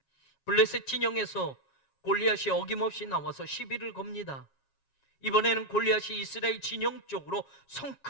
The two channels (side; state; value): right; late; 7.3 ms